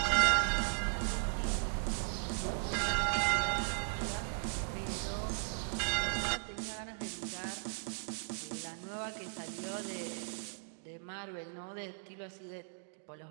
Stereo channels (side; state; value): left; silent; digital silence